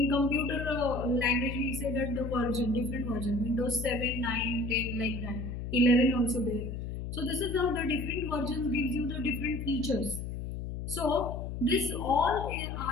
computer language, we say that the version, different version, Windows 7, 9, 10, like that, 11 also there. So this is how the different versions gives you the different features. So this all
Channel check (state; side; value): noise; left; hum, 6 dB below the sound